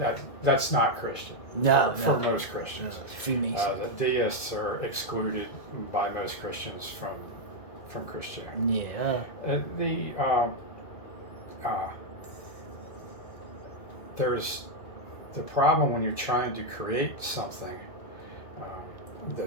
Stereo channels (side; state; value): right; late; 2.0 ms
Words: that's not Christian. For most Christians. Freemason. The deists are excluded by most Christians from Christianity. Yeah. There's the problem when you're trying to create something